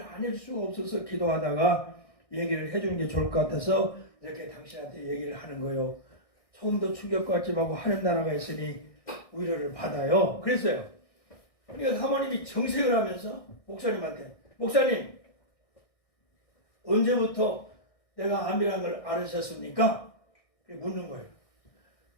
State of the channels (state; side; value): late; right; 1.6 ms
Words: 안 해줄 수가 없어서 기도하다가 얘기를 해주는 게 좋을 것 같아서 이렇게 당신한테 얘기를 하는 거예요. 조금도 충격받지 말고 하는 나라가 있으니 위로를 받아요. 그랬어요. 그러니까 사모님이 정색을 하면서 목사님한테 목사님 언제부터 내가 암이라는 걸 알으셨습니까? 묻는 거예요.